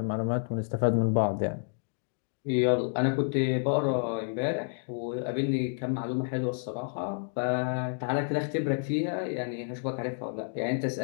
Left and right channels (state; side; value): silent; right; digital silence